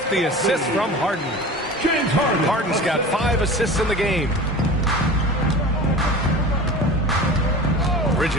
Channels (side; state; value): both; normal; correlation 0.35